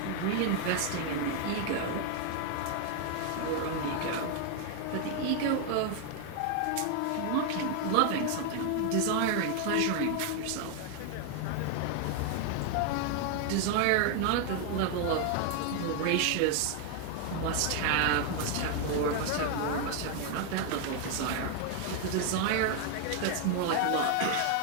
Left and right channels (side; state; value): both; different; correlation 0.00